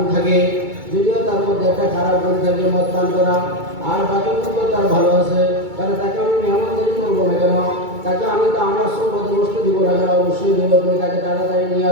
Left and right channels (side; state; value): left; late; 2.3 ms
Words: থাকে, মদ পান করা, আর বাকি গুণ তো তার ভালো আছে, তাহলে তাকে আমি মেহমানদারি করবো না কেন? তাকে আমি তো আমার সৌভাগ্য বস্তু দিব না কেন? অবশ্যই দিব। তুমি তাকে তাড়াতাড়ি নিয়ে